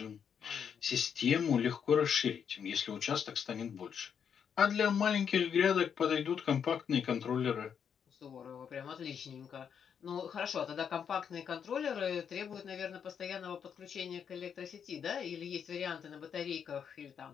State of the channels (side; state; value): right; quieter; 7.5 dB